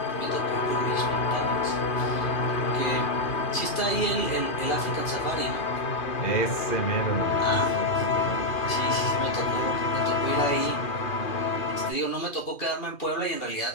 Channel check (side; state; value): right; late; 2.4 ms